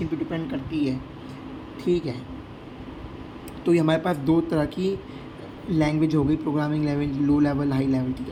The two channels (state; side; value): identical; both; correlation 1.00